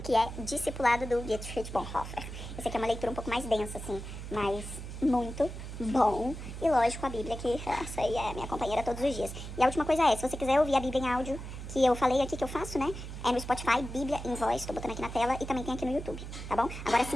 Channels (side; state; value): right; noise; hum, 9 dB below the sound